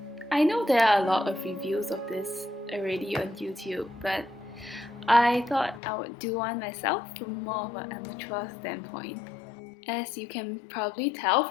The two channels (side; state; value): right; drops out; at 5.8 s